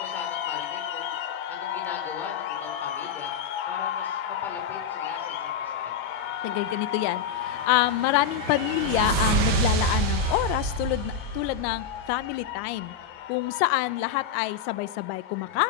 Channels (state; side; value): quieter; right; 6.2 dB